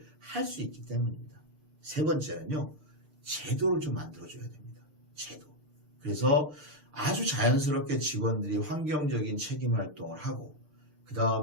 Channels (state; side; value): late; left; 6.6 ms